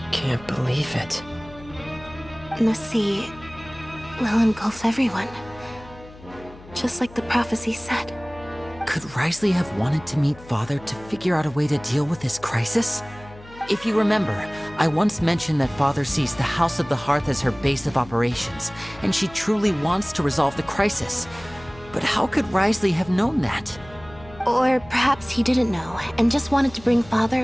can't believe it. The sea will engulf everyone. Just like the prophecy said. Could Risley have wanted to meet Father to figure out a way to deal with this crisis? If you remember, I once mentioned that Father sees the House of the Hearth as her base of operations, and she truly wants to resolve the crisis. But how could Risley have known that? Or perhaps he didn't know, and just wanted to bring Father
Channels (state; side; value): noise; left; hum, 20 dB below the sound